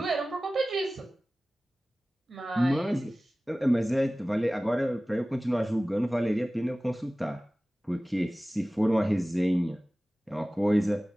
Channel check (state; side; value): normal; both; correlation 0.97